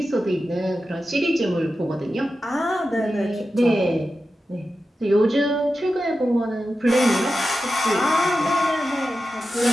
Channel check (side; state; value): both; normal; correlation 0.92